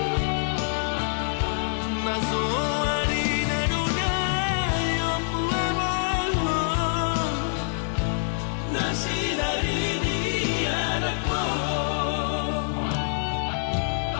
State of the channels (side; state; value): right; silent; 61 dB below the other